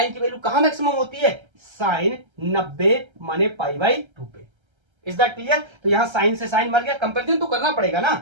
की वैल्यू कहां मैक्सिमम होती है, साइन 90 माने पाई बाई 2 पे। Is that clear? तो यहां साइन से साइन मर गया, कंपेरिजन तो करना पड़ेगा ना,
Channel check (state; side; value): late; left; 1.3 ms